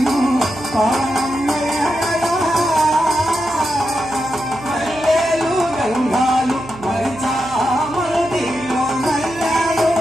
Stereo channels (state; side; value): noise; right; hum, 16 dB below the sound